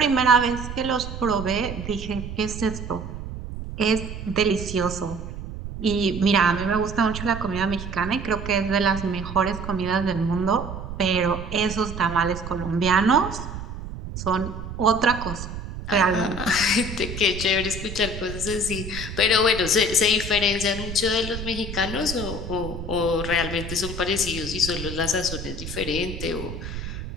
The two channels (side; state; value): right; noise; rumble, 8 dB below the sound